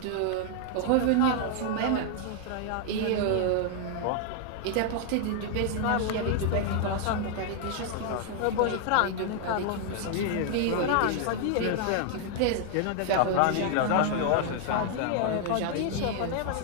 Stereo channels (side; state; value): both; different; correlation 0.00